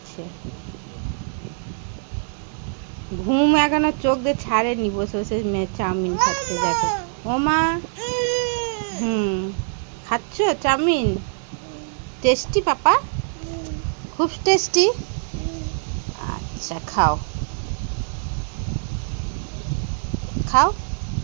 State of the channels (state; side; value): silent; left; 63 dB below the other